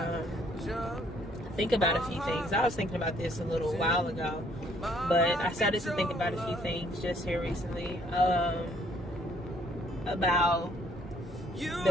think about a few things. I was thinking about this a little while ago, but I started to think about a few things just here recently about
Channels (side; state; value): both; normal; correlation 0.64